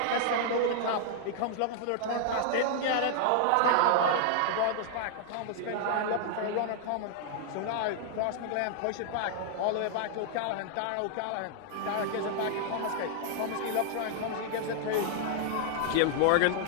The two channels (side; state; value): both; different; correlation 0.00